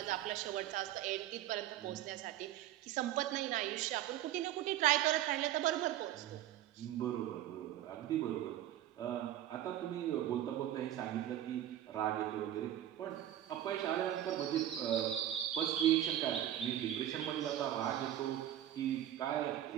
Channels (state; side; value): quieter; left; 12.3 dB